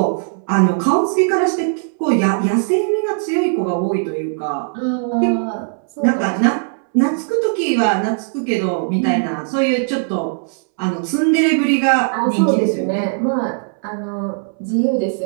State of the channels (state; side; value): silent; left; 67 dB below the other